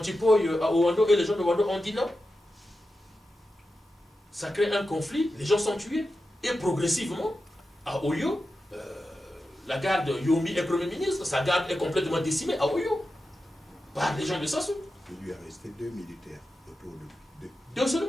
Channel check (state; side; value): normal; both; correlation 0.91